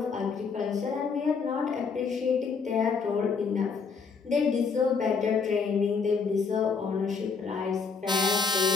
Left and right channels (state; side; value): quieter; right; 5.3 dB